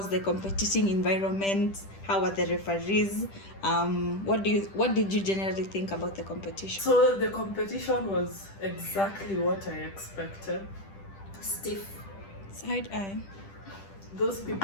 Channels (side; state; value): right; late; 10 ms